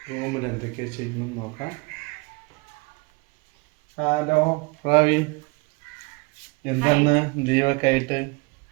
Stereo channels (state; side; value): quieter; left; 27.5 dB